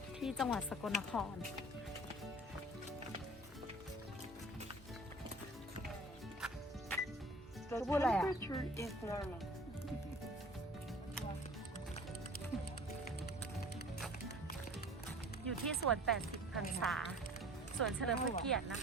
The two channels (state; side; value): normal; both; correlation 0.45